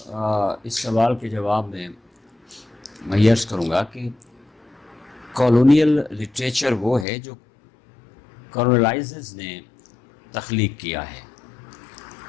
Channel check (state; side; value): drops out; right; at 7.1 s